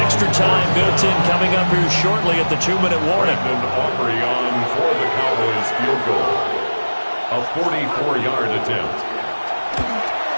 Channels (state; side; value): inverted; both; correlation -1.00